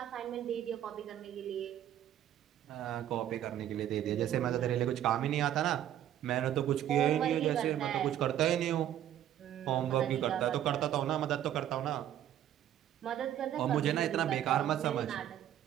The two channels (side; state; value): left; quieter; 11.3 dB